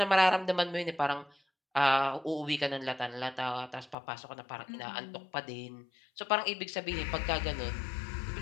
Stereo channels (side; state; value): right; drops out; at 4.0 s